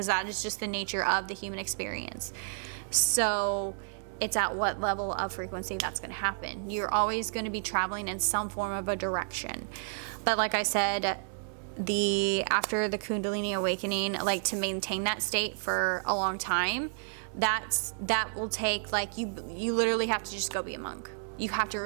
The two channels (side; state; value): left; silent; 57 dB below the other